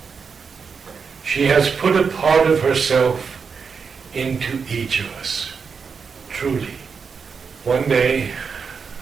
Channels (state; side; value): quieter; left; 5.7 dB